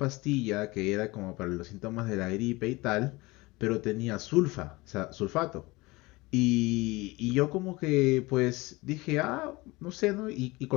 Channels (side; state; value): right; quieter; 22.5 dB